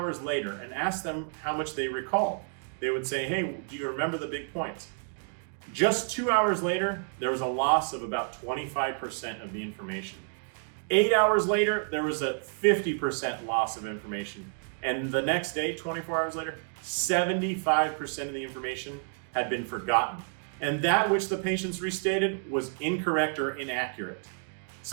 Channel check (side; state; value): left; silent; 58 dB below the other